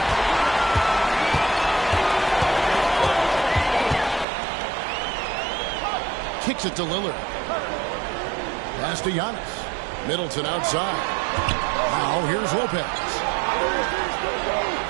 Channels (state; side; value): drops out; left; at 4.2 s